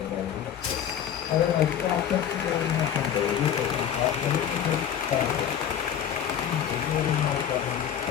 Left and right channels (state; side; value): quieter; right; 9.1 dB